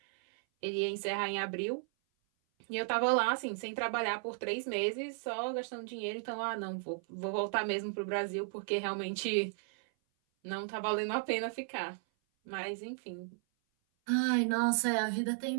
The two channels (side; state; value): left; silent; 55 dB below the other